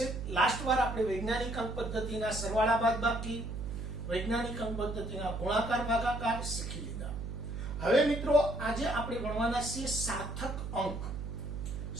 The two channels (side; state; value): right; noise; hum, 6 dB below the sound